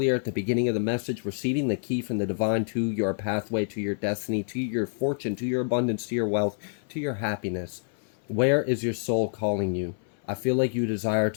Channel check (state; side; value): silent; right; 58 dB below the other